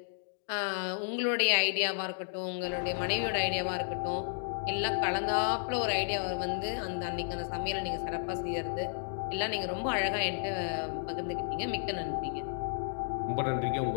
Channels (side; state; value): right; silent; digital silence